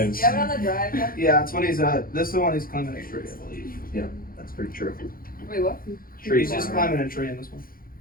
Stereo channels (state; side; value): late; right; 0.42 ms